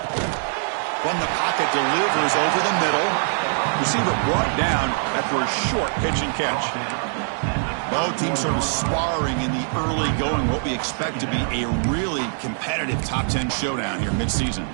From the pocket, delivers over the middle. Receiver brought down after a short pitch and catch. Both teams sort of sparring in the early going, what we expect to be a really competitive top 10 showdown here mid-season.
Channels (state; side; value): silent; left; 63 dB below the other